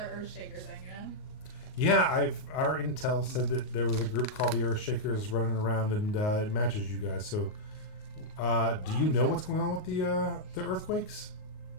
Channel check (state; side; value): late; right; 38 ms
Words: Earthshaker thing, Yeah, our intel said that there was a group called the Earthshakers running around, and it matches you guys. So, do you know what's going on with the earthquakes?